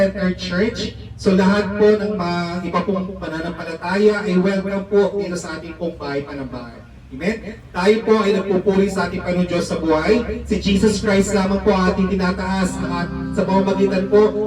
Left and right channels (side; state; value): both; identical; correlation 1.00